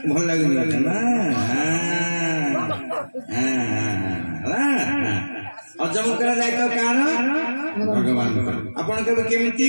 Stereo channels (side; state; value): both; inverted; correlation -1.00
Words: लगे हजम कर दायित्व कार भगवान आपण केमिति